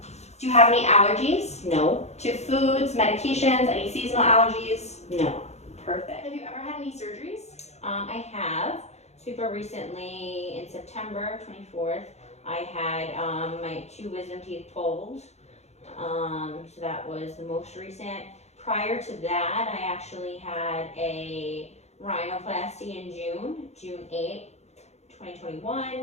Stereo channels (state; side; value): late; right; 0.32 ms